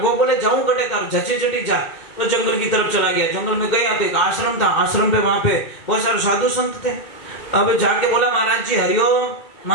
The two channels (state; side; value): late; right; 2.2 ms